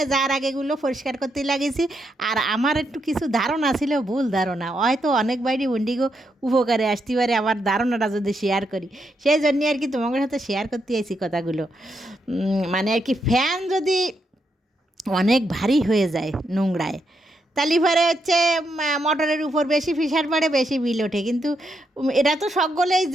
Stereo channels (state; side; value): normal; both; correlation 0.81